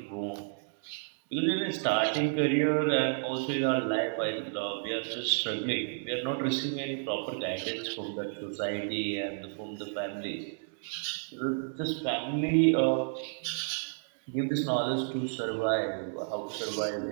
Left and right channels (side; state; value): left; silent; digital silence